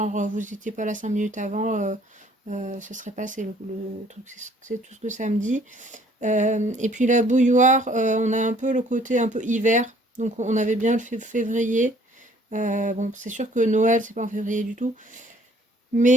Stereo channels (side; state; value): both; normal; correlation 0.58